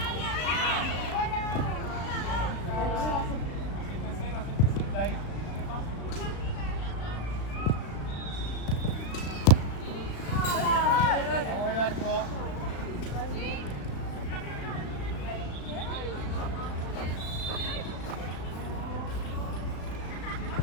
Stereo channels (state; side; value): late; right; 36 ms